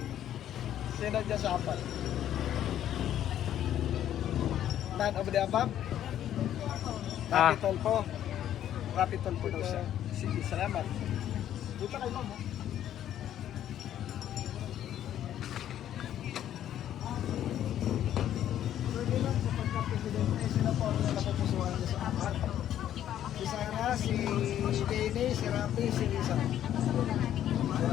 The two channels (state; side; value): quieter; right; 11.2 dB